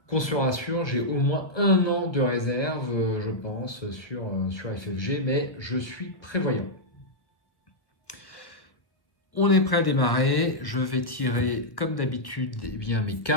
Qu'on se rassure, j'ai au moins 1 an de réserve, je pense, sur FFG, mais je suis prévoyant. On est prêt à démarrer, je vais tirer comme d'habitude eh bien, mes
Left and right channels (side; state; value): right; late; 1.3 ms